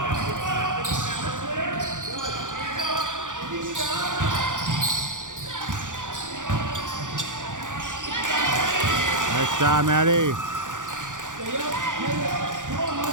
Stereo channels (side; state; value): left; late; 0.87 ms